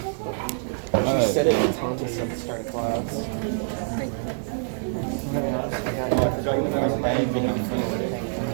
Alright. said it in Thomas at the start of class.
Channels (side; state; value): left; silent; digital silence